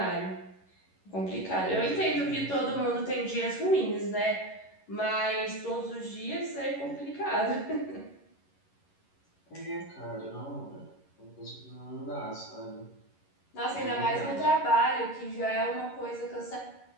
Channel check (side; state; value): right; late; 11 ms